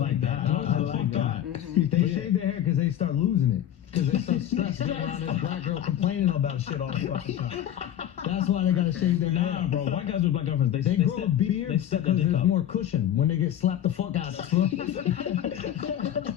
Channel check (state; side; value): quieter; right; 11.0 dB